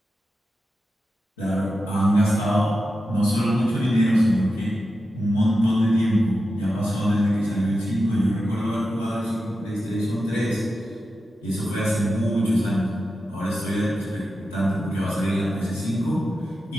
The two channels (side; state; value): both; normal; correlation 0.90